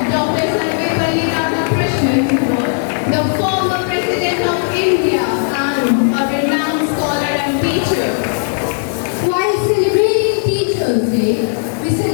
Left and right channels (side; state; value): right; silent; 69 dB below the other